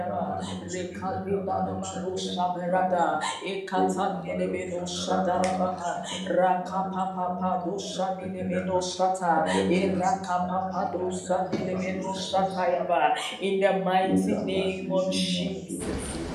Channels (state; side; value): identical; both; correlation 1.00